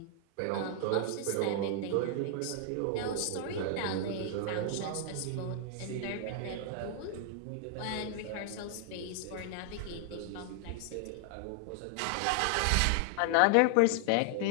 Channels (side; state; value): both; different; correlation 0.00